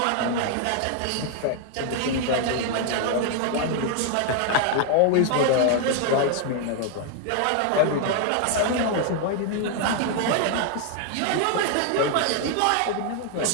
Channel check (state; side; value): different; both; correlation 0.00